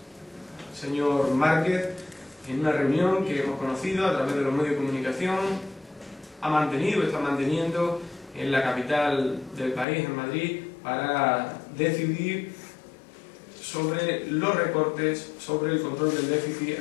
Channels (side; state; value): right; drops out; at 9.9 s